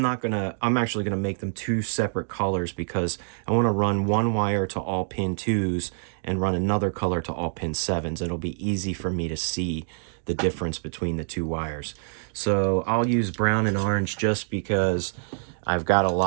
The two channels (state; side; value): silent; left; digital silence